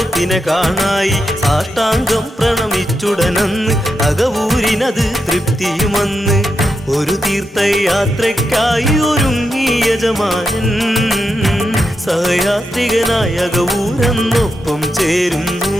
കാണായി. സാഷ്ടാംഗം പ്രണമിച്ചുടനന്ന് അകവൂരിനത് തൃപ്തിയുമന്ന്. ഒരു തീർത്ഥയാത്രയ്ക്കായി ഒരുങ്ങി യജമാനൻ സഹയാത്രികനായ അകവൂരെന്നൊപ്പം ചേരുന്നു.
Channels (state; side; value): normal; both; correlation 0.86